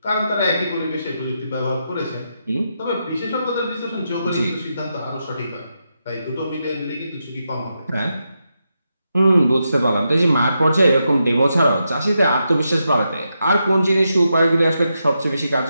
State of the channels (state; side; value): inverted; both; correlation -0.85